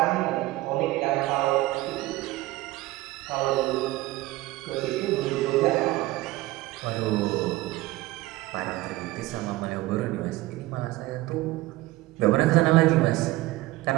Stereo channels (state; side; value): quieter; left; 18.3 dB